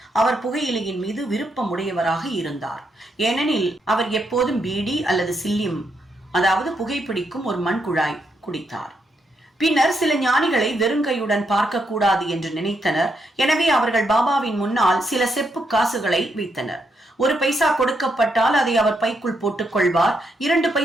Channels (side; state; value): both; normal; correlation 0.79